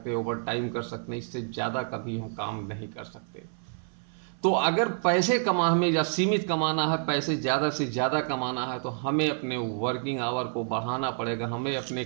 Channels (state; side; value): silent; left; 55 dB below the other